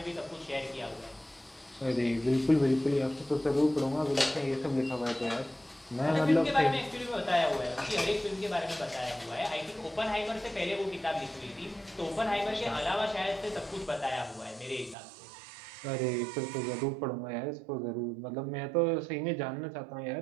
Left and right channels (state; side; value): drops out; left; at 15.0 s